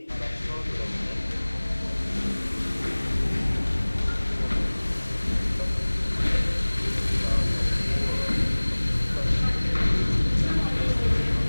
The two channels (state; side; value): inverted; both; correlation -1.00